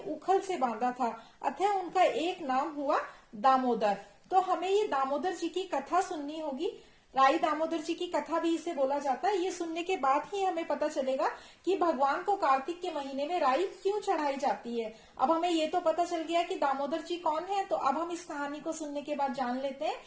से बांधा था, अतः उनका एक नाम हुआ दामोदर। तो हमें ये दामोदर जी की कथा सुननी होगी। राई दामोदर जी की कथा भी इसे बोला जाता है। ये सुनने के बाद ही हमें पता चलेगा कि भगवान को कार्तिक के महीने में राई क्यों चढ़ाई जाती है। अब हमें ये तो पता चल गया कि दामोदर जी कौन है, तो अब हम इस कहानी को सुनने के बाद जान लेते हैं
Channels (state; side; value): identical; both; correlation 1.00